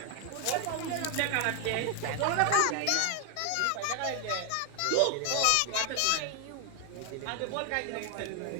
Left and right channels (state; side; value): different; both; correlation 0.00